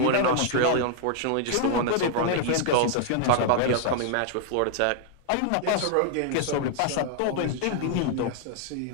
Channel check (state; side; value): different; both; correlation 0.00